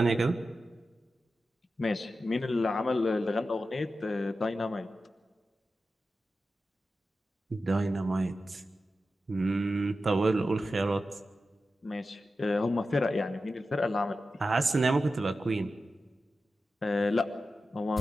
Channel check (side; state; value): both; normal; correlation 0.92